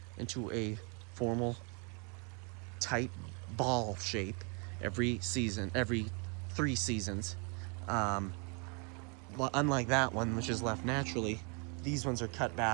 into a formal, tight ball shape every 3 seasons. Unlike that one, which is left naturally, these ones are cut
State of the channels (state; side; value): quieter; left; 35.5 dB